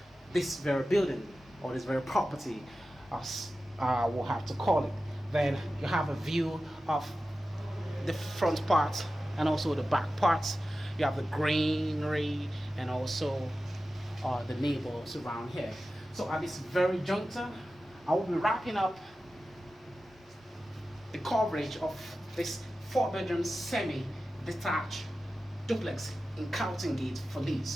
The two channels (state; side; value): normal; both; correlation 0.94